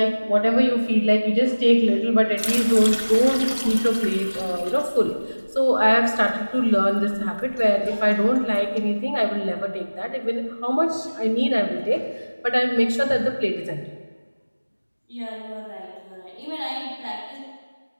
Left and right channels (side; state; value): both; inverted; correlation -1.00